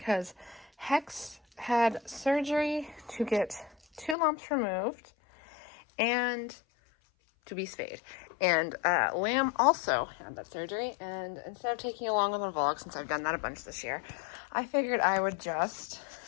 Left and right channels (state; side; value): drops out; right; at 4.2 s